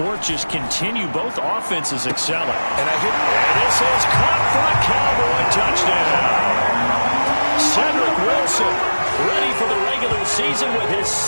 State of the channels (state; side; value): inverted; both; correlation -1.00